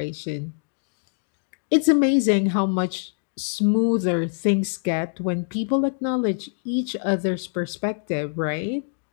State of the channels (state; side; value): silent; right; digital silence